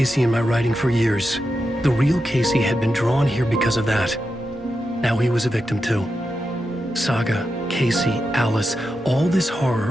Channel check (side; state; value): both; normal; correlation 0.88